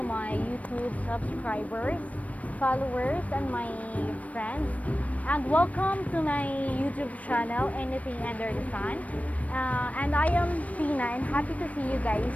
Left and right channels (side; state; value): right; late; 0.068 ms